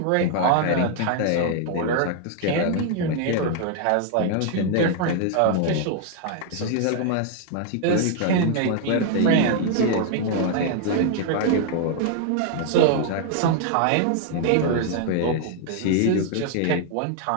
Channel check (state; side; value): different; both; correlation 0.00